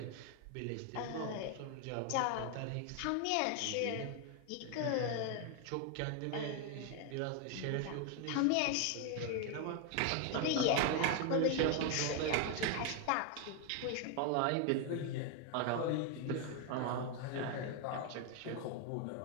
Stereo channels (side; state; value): both; different; correlation 0.01